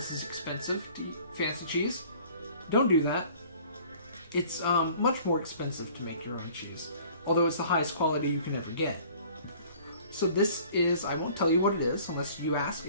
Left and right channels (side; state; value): both; inverted; correlation -0.51